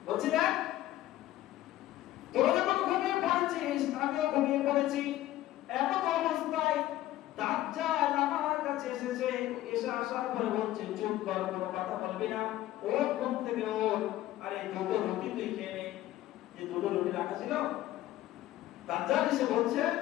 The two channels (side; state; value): right; quieter; 14.7 dB